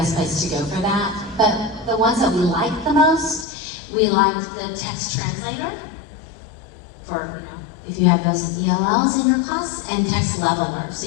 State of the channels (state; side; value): drops out; right; at 3.5 s